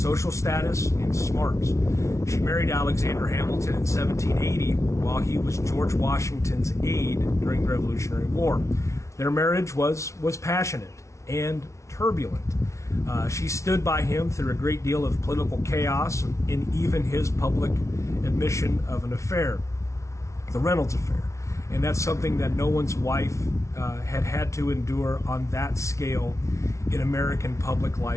status and smarts. She married Alexander Hamilton in 1780 while he was George Washington's aide during the Revolutionary War. Their marriage was passionate and turbulent. She stood by him through a great deal of political chaos and even his public admission of an affair, the Reynolds affair. And that's something that no one's wife had to endure on that scale in American public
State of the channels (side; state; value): right; late; 0.14 ms